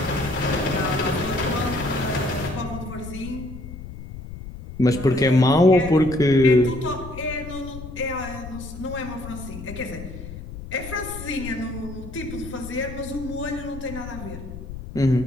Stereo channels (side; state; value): left; noise; rumble, 11 dB below the sound